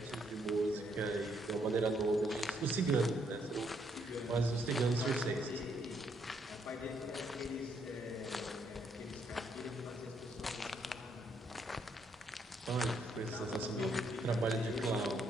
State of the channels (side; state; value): both; normal; correlation 0.73